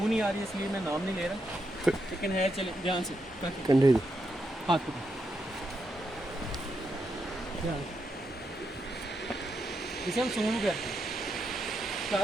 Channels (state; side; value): normal; both; correlation 0.82